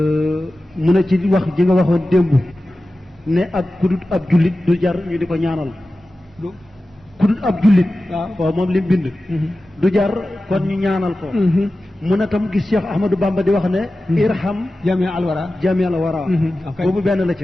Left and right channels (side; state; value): both; normal; correlation 0.94